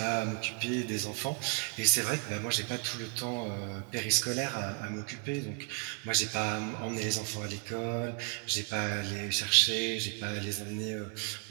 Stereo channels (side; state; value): left; quieter; 33.7 dB